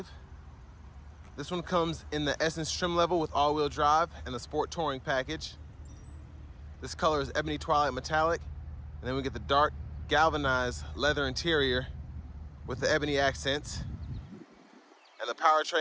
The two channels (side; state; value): both; identical; correlation 1.00